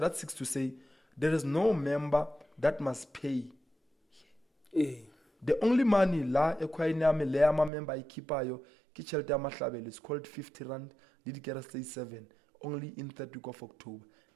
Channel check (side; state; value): left; drops out; at 7.7 s